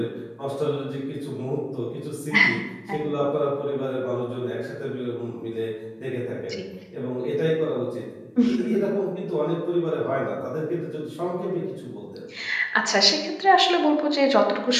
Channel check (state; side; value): identical; both; correlation 1.00